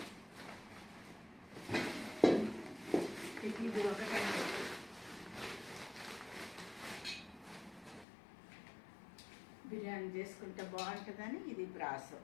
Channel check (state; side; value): drops out; right; at 8.1 s